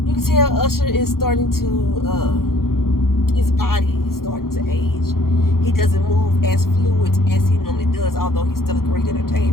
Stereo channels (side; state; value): right; late; 0.92 ms